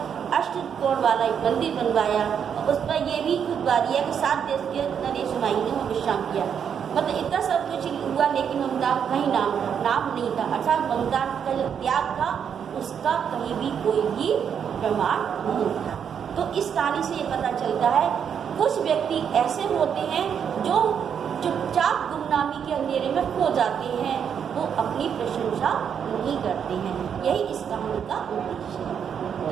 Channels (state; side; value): quieter; left; 7.8 dB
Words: अष्टकोण वाला एक मंदिर बनवाया और उस पर यह भी खुतबा दिया कि 7 देश के नरेश हुमायूं ने वहाँ विश्राम किया। मतलब इतना सब कुछ हुआ, लेकिन ममता का कहीं नाम नहीं था, अर्थात ममता का जो त्याग था उसका कहीं भी कोई भी प्रमाण नहीं था। तो इस कहानी से ये पता चलता है कुछ व्यक्ति ऐसे होते हैं जो चुपचाप गुमनामी के अंधेरे में खो जाते हैं, वो अपनी प्रशंसा नहीं करते हैं। यही इस कहानी का उद्देश्य है।